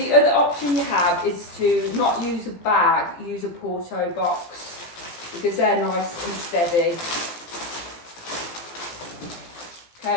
other option you have is to not use a bag, use a porto box, because they're nice and steady.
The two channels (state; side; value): late; right; 17 ms